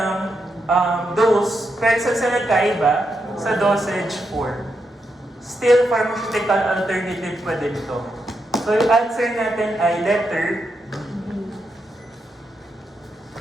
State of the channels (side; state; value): both; normal; correlation 0.83